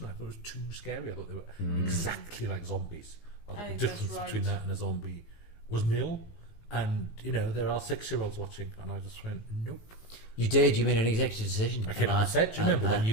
I thought it was too scary. I thought they were exactly like zombies. I thought the think difference that's right. between that and a zombie was nil. And you know there are 6-year-olds watching, and I just went nope. it? You did. You made an executive decision. I came out and said, do you remember when you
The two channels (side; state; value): right; late; 18 ms